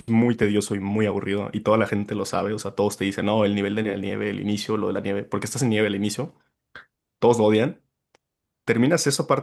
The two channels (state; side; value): identical; both; correlation 1.00